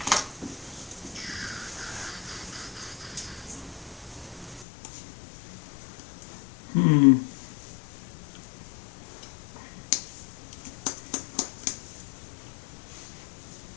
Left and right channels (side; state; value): right; drops out; at 4.7 s